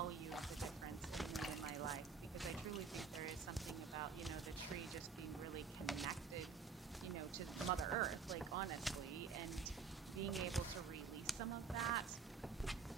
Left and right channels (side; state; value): left; quieter; 5.3 dB